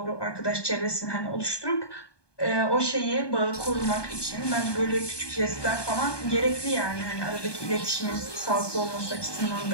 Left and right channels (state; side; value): late; right; 1.2 ms